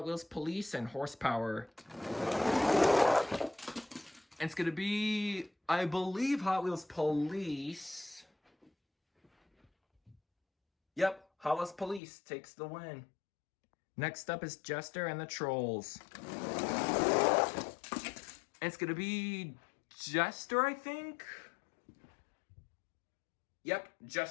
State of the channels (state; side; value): drops out; right; at 12.0 s